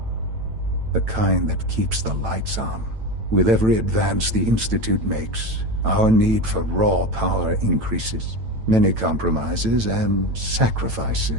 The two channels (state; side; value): late; left; 9.0 ms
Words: The kind that keeps the lights on. With every advance the Institute makes, our need for raw power increases. Many compromises and